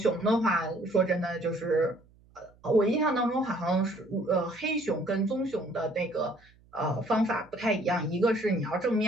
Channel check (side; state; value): right; noise; hum, 29 dB below the sound